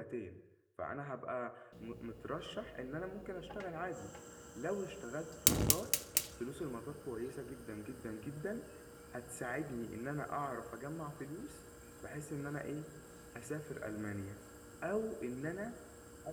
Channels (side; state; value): both; identical; correlation 1.00